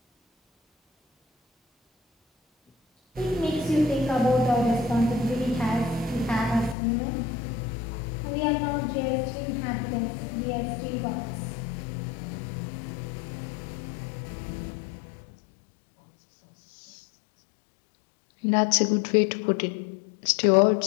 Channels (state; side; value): drops out; right; at 6.8 s